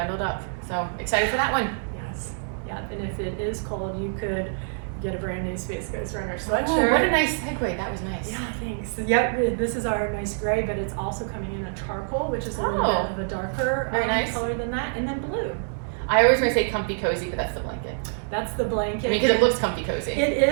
up. So excited for that one. Yes. Yeah, and if it is cold, you could get a brand new Space Coast Runner Oh, sweatshirt. what a nice segue. That was nice. Yeah, thanks. Yep, this is our nice gray, but it's also coming in a charcoal, which is a little bit of a darker Very nice. color than that, and then blue. I always want to say comfy cozy, but that's the blanket. That's the blanket. I mean, because it looks comfy cozy. It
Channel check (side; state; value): left; silent; digital silence